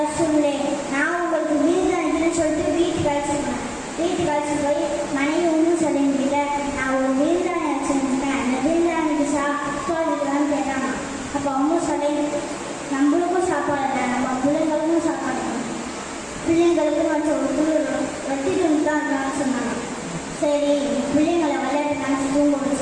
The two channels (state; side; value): identical; both; correlation 1.00